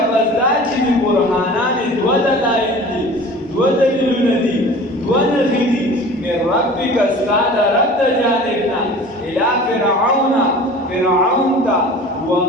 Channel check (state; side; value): normal; both; correlation 0.41